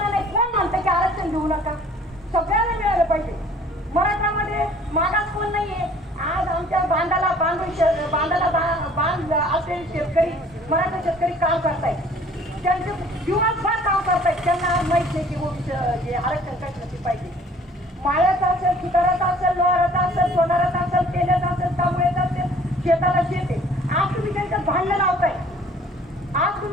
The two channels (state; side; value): normal; both; correlation 0.54